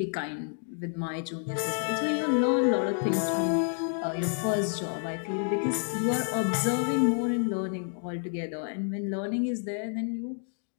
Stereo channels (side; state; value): right; silent; 58 dB below the other